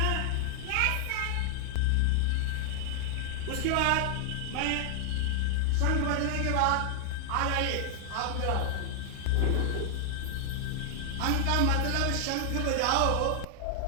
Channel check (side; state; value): both; different; correlation 0.00